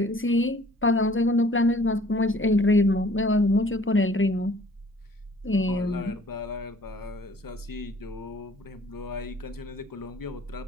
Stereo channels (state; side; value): normal; both; correlation 0.55